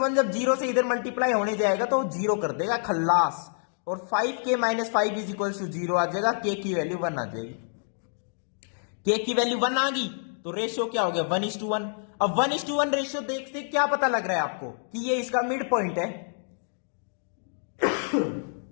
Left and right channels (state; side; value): silent; right; digital silence